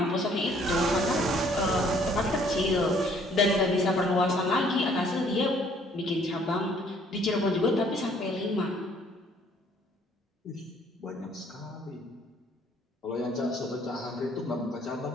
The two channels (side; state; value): both; normal; correlation 0.61